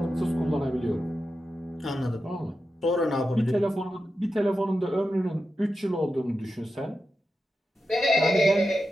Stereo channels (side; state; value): both; normal; correlation 0.90